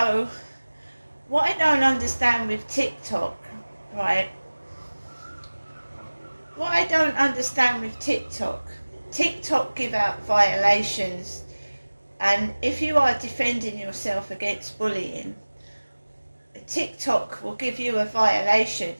what I don't understand with TikTok, right? What I don't understand with TikTok give out violations, and if you are defending yourself against bullying, TikTok will give you a violation,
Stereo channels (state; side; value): inverted; both; correlation -1.00